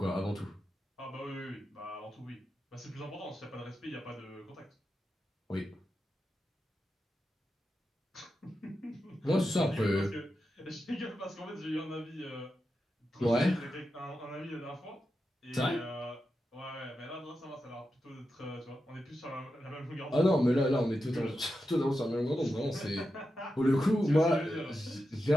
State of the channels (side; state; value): both; normal; correlation 0.89